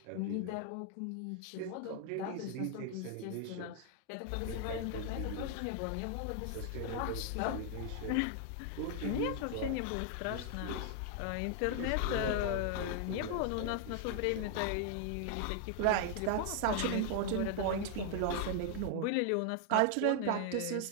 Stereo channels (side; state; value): both; different; correlation 0.00